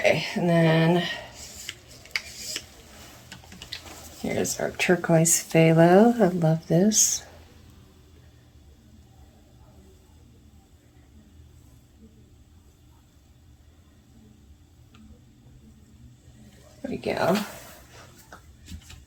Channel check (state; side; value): identical; both; correlation 1.00